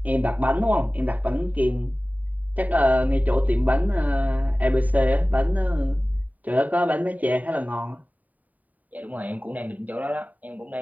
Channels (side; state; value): left; late; 0.076 ms